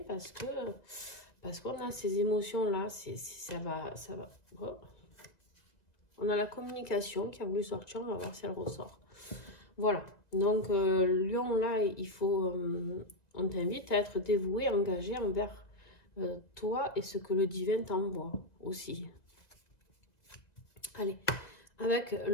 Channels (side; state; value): right; late; 1.9 ms